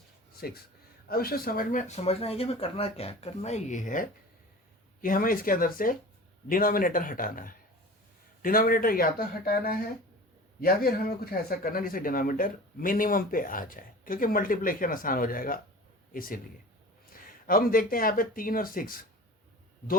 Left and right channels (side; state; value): both; normal; correlation 0.38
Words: अब इसे समझना है कि हमें करना क्या है। करना ये है कि हमें इसके अंदर से डिनोमिनेटर हटाना है। डिनोमिनेटर या तो हटाना है या फिर हमें कुछ ऐसा करना है जिससे डिनोमिनेटर मिनिमम पे आ जाए, क्योंकि मल्टीप्लिकेशन आसान हो जाएगा इसीलिए। अब हम देखते हैं यहाँ पे 3 और 6